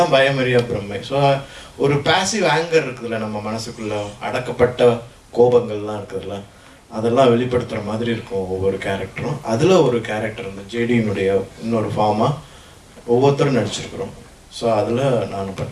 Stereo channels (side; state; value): both; identical; correlation 1.00